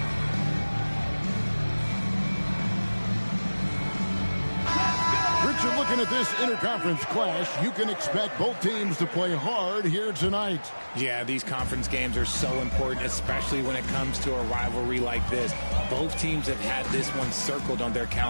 Richard, looking at this interconference clash, you can expect both teams to play hard here tonight. Yeah, these conference games are so important, especially when it comes to a rivalry like this. Both teams have had this one circled on their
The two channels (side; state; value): both; inverted; correlation -1.00